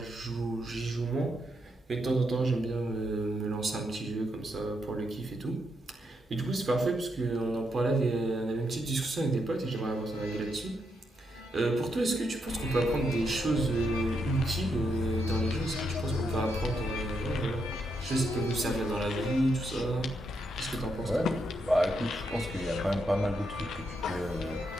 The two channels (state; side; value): normal; both; correlation 0.80